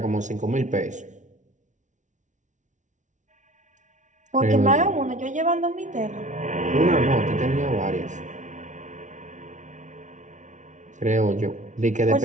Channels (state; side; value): late; left; 0.36 ms